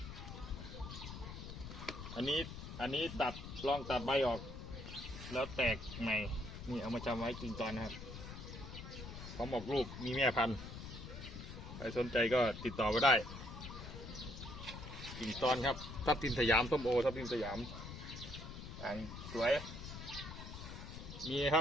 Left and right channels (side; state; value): left; noise; rumble, 10 dB below the sound